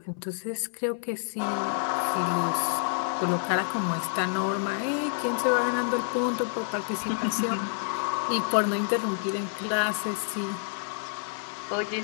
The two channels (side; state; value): right; silent; 59 dB below the other